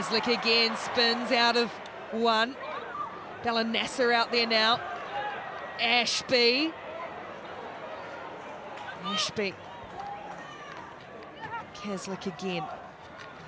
again spins out of one. Bella Nasser out there now. Ashby. Caslick again.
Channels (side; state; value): both; identical; correlation 1.00